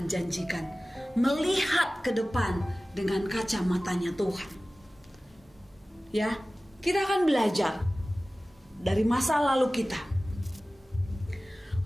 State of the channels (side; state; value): both; normal; correlation 0.97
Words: janjikan. Melihat ke depan dengan kacamatanya Tuhan. Ya, kita akan belajar dari masa lalu kita.